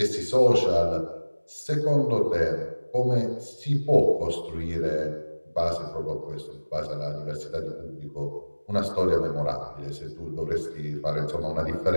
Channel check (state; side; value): inverted; both; correlation -1.00